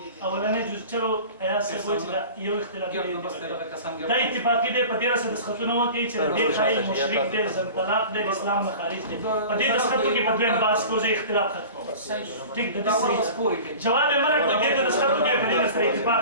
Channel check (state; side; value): inverted; both; correlation -0.38